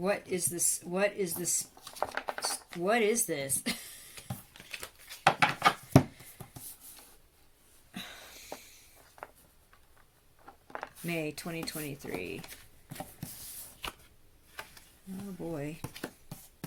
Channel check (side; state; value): both; identical; correlation 1.00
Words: is this? What is this? What is this? May 2023. Oh boy.